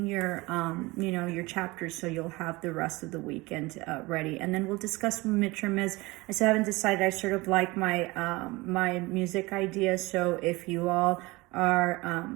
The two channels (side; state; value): left; quieter; 22.5 dB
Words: your your chapters, so you'll have the rest of the weekend ready, and then we'll discuss what midterm is. I still haven't decided. I sort of like my my music ideas, so if you all are